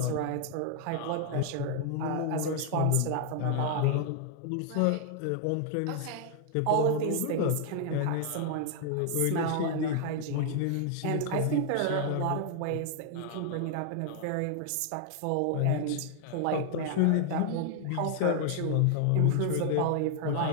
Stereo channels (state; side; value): different; both; correlation 0.00